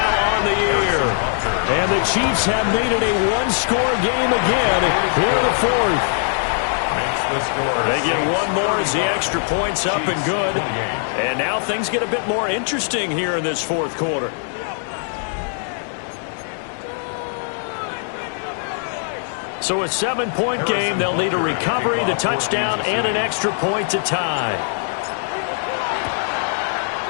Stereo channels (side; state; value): right; silent; digital silence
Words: on the year. And the Chiefs have made it a 1-score game again here in the 4th. They get one more as the extra point's up and good. And now things get a bit more interesting here in this 4th quarter. So a 7-point game. They'll need a recovery, the touchdown, and an extra point to tie.